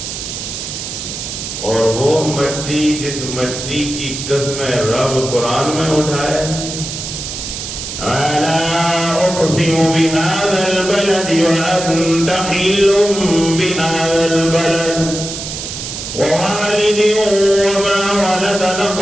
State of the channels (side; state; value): right; noise; hiss, 7 dB below the sound